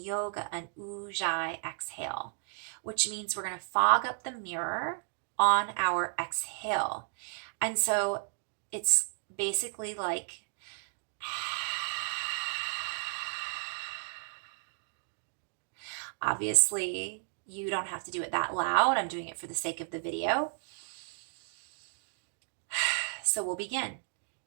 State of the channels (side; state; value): left; silent; digital silence